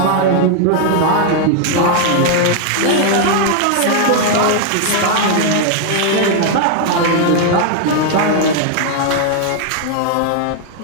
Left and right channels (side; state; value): both; different; correlation 0.00